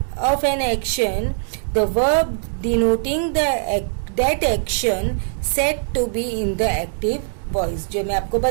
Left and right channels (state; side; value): silent; left; digital silence